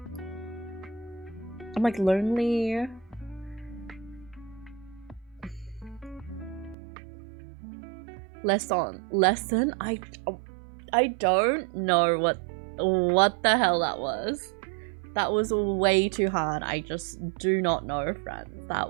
I'm like lonely. Lesson? I don't know what the hell that was. That was way too hard. I just do not know, friends. That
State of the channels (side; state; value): left; drops out; at 6.8 s